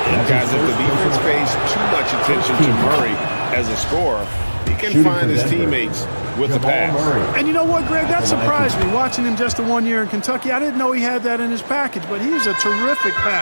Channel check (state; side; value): inverted; both; correlation -1.00